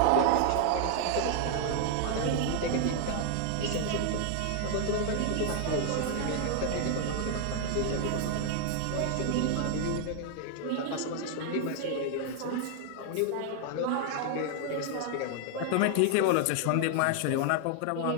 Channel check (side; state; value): both; different; correlation 0.00